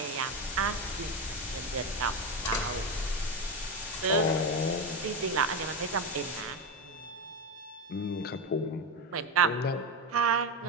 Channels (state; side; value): normal; both; correlation 0.14